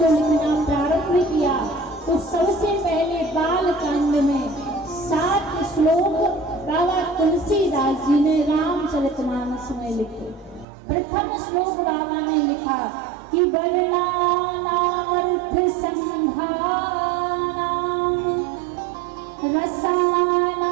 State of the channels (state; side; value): drops out; left; at 10.7 s